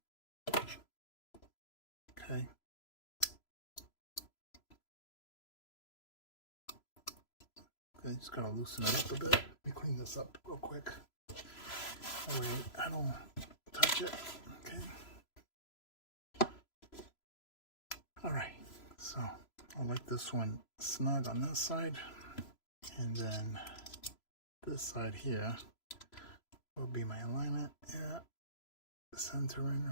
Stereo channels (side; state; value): right; late; 3.0 ms